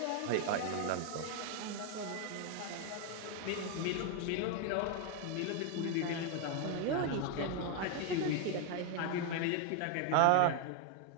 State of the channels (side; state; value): both; different; correlation 0.01